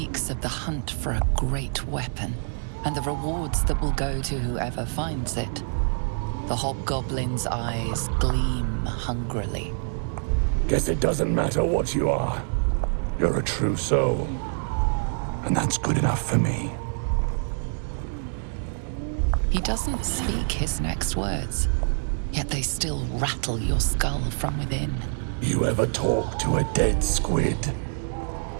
of the hunt for a great weapon and the rewards that will go to whoever finds it. The hobgoblin's eyes gleam hungrily. Guess it doesn't matter what you are. You're a true soul. And that's good enough for me. He doesn't speak his next words, yet they still rattle your skull from within. You ever talk to a dead squid?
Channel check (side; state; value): left; silent; digital silence